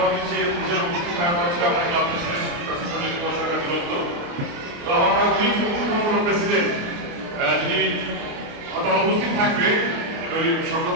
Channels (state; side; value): late; left; 29 ms